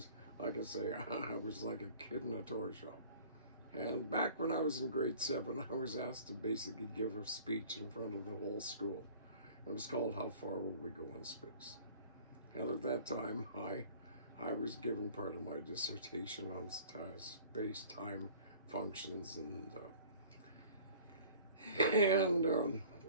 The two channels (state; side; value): inverted; both; correlation -0.47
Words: like I say, I was like a kid in a toy shop. And back when I was in grade 7, I was asked to basically give a speech in front of the whole school. It was called "How Far Will We Go in Space?" And at that time, I was giving part of my dissertation on space-time functions and